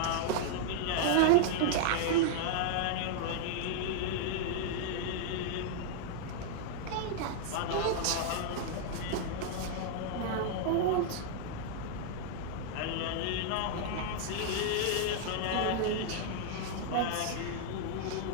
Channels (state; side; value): different; both; correlation -0.01